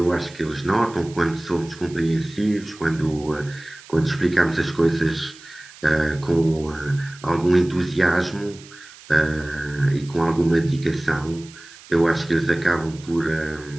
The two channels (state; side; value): noise; right; hiss, 20 dB below the sound